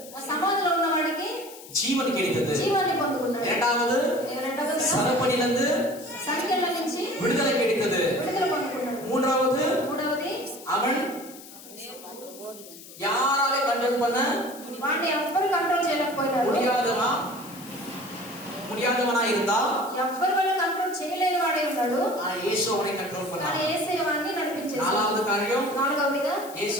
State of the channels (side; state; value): left; noise; hiss, 17 dB below the sound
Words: సమాధిలో ఉన్న వాడికి జీవన్ கிடைத்தது. జీవాన్ని పొందుకున్నాడు. இரண்டாவது சரப்பணியிலிருந்து సంఖ్యల నుంచి விடுதலை கிடைத்தது. విడుదల పొందుకున్నాడు. மூன்றாவது அவன் யாராலே கண்ட்ரோல் பண்ண వాడిని ఎవ్వరు కంట్రోల్ చేయలేకపోయినారు. முடியாதவா முடியாதவனா இருந்தா ఎవ్వరి వల్ల కంట్రోల్ చేయలేని వాడే ఉన్నాడు. இயேசு அவனை கண்ட்ரோல் కానీ பண்ணார். యేసయ్య వాడిని నడిపించేశాడు. நாலாவது காரியம், నాలుగవదిగా